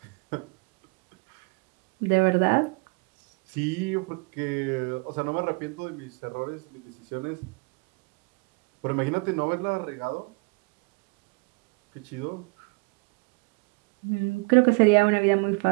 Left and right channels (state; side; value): quieter; left; 30.7 dB